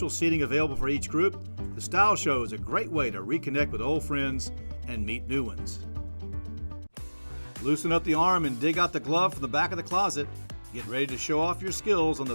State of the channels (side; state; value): both; inverted; correlation -1.00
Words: seating available for each group, the Style Show is a great way to reconnect with old friends and meet new ones. Loosen up the arm and dig out the glove from the back of the closet. Get ready to show off your skills on